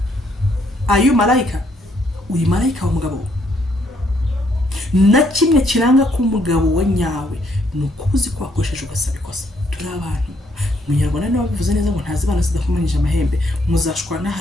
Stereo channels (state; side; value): normal; both; correlation 0.71